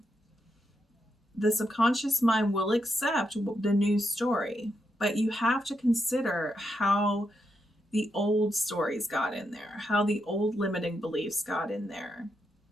The subconscious mind will accept the new story, but you have to consider how the old stories got in there, how the old limiting beliefs got in there.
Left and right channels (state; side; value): normal; both; correlation 0.82